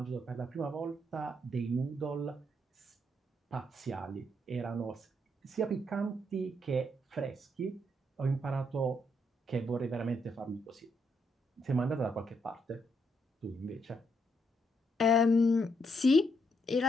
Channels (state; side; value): normal; both; correlation 0.76